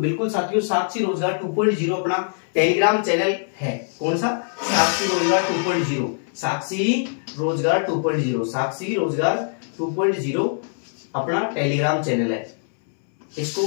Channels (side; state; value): right; silent; 64 dB below the other